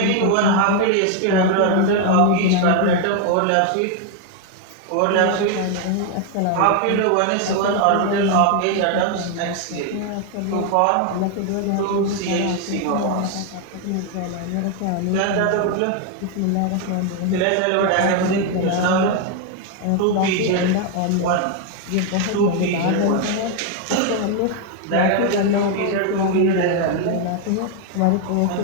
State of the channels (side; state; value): both; different; correlation 0.01